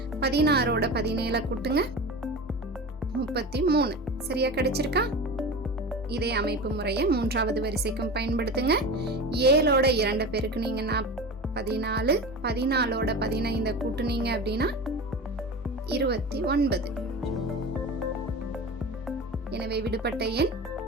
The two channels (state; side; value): normal; both; correlation 0.30